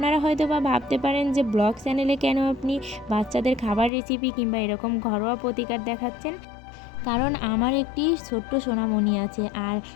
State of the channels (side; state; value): right; drops out; at 3.9 s